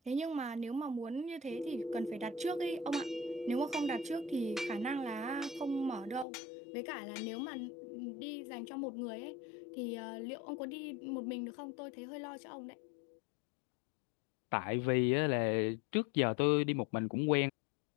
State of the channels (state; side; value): drops out; right; at 6.2 s